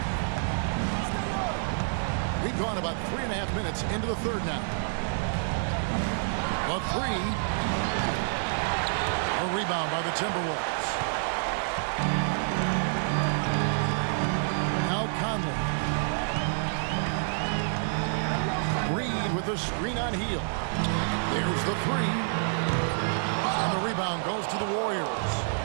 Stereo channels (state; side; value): silent; left; 59 dB below the other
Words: We've gone about 3.5 minutes into the third now. A 3. A rebound by the Timberwolves. Now Conley. Reed with the screen on Hield. There's the 3. And the rebound goes to the Warriors.